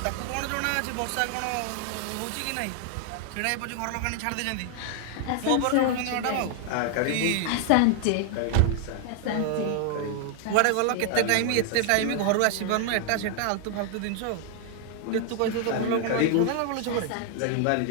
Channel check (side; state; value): both; different; correlation 0.00